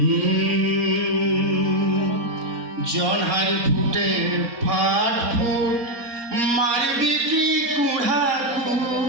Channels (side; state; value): left; late; 4.2 ms